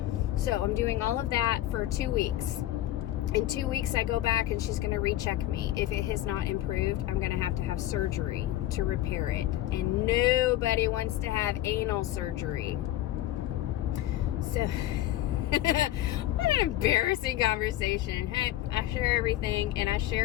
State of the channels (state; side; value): quieter; right; 14.2 dB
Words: So I'm doing all of that for 2 weeks. In 2 weeks, I go back and she's going to recheck me. If it has not improved, I'm going to have surgery to repair it. And nobody wants to have anal surgery. So, what an embarrassing conversation. Hey, I share everything, and I